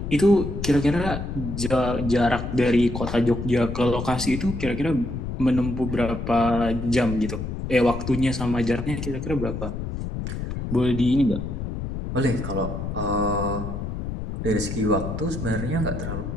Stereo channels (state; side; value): noise; left; rumble, 5 dB below the sound